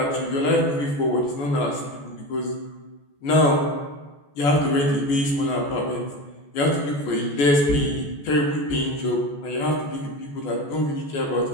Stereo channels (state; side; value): late; right; 14 ms